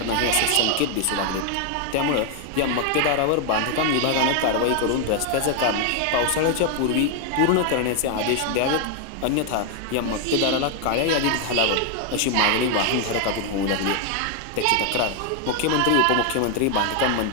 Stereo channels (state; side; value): different; both; correlation 0.00